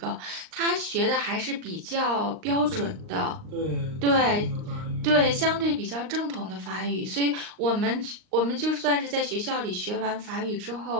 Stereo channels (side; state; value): left; late; 38 ms